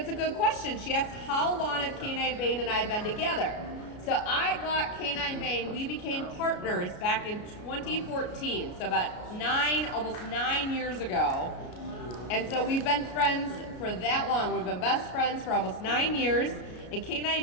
a good question. She asked, how long have Canine Bane and I been together? So I got Canine Bane, we became partners back in 2014. So about almost 9 years ago. And so we've been friends for that long. We've been best friends for almost 9 years. And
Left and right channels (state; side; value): late; right; 33 ms